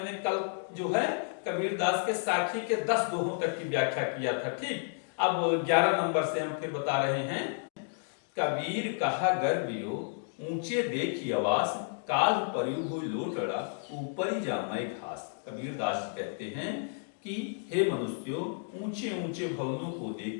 कल जो है कबीरदास के साखी के 10 दोहों तक की व्याख्या किया था। ठीक, अब 11 नंबर से हम फिर बता रहे हैं। कबीर कहा गर्वियो ऊंचे देखी आवास, काल परियु हुई लोटड़ा ऊपर ही जामाए घास। कबीरदास कहते हैं कि हे मनुष्यों, ऊंचे ऊंचे भवनों को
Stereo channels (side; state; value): right; silent; digital silence